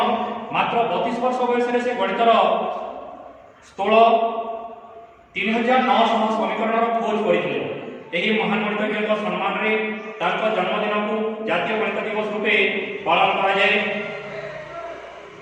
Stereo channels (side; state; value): both; identical; correlation 1.00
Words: ମାତ୍ର 32 ବର୍ଷ ବୟସରେ ସେ ଗଣିତର ସ୍ଥୂଳ 3900 ସମୀକରଣର ଖୋଜ କରିଥିଲେ। ଏହି ମହାନ ଗଣିତଜ୍ଞଙ୍କ ସମ୍ମାନରେ ତାଙ୍କ ଜନ୍ମଦିନକୁ ଜାତୀୟ ଗଣିତ ଦିବସ ରୂପେ ପାଳନ କରାଯାଏ।